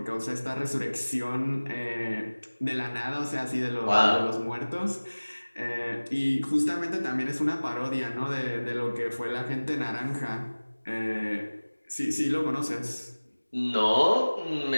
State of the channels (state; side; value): inverted; both; correlation -1.00